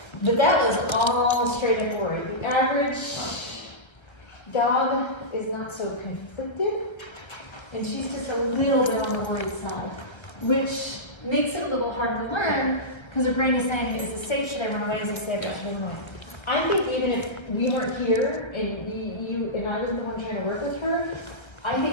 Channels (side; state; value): right; late; 1.4 ms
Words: But that was all straight up worry. The average dog is not so conflicted, and she's just a little bit on the worried side, which makes it a little hard to learn because her brain is saying, is this safe? Should I run away? Is this safe? Should I run away? I think even if we weren't here and you and I was the one trying to work with her, I think